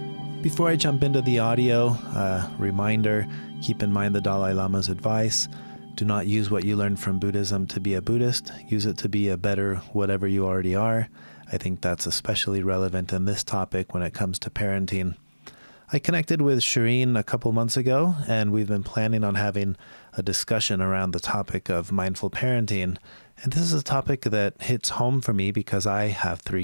Before I jump into the audio, reminder, keep in mind the Dalai Lama's advice. Do not use what you learned from Buddhism to be a Buddhist. Use it to be a better whatever you already are. I think that's especially relevant in this topic when it comes to parenting. I connected with Shirin a couple months ago, and we've been planning on having a discussion around the topic of mindful parenting. And this is a topic that hits home for me because I have 3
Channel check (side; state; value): both; inverted; correlation -1.00